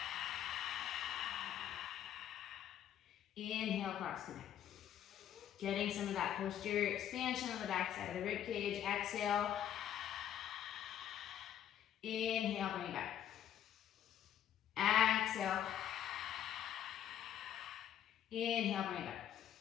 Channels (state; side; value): quieter; right; 10.5 dB